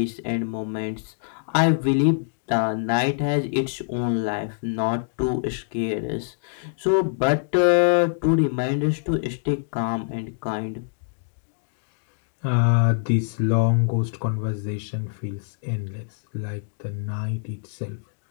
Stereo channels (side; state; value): right; silent; digital silence